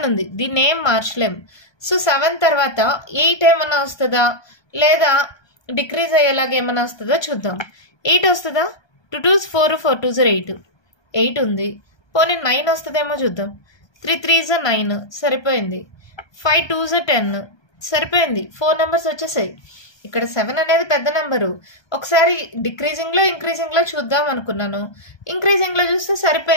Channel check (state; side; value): late; right; 1.2 ms